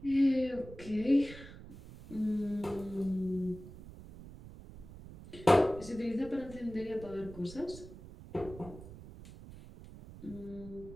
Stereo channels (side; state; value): right; noise; rumble, 16 dB below the sound